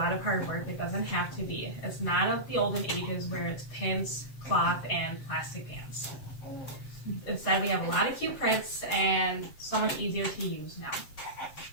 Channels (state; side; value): late; right; 7.6 ms